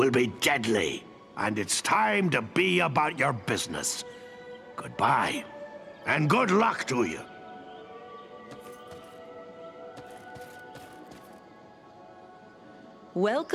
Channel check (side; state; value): both; identical; correlation 1.00